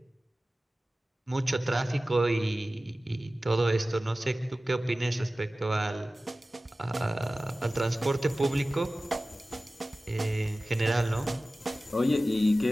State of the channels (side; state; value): both; normal; correlation 0.96